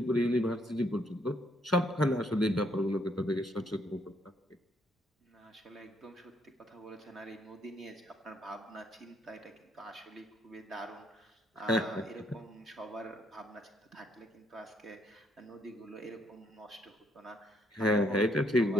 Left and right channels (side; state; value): both; normal; correlation 0.71